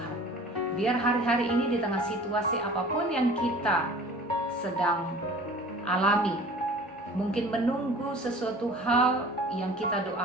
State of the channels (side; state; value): both; normal; correlation 0.45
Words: Biar hari-hari ini di tengah situasi apapun yang kita sedang alami, mungkin menunggu sesuatu hal yang kita